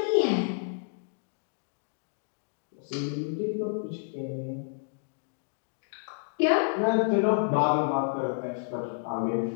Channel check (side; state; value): right; silent; digital silence